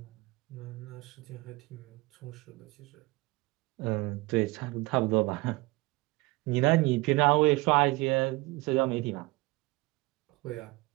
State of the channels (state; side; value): quieter; left; 23.1 dB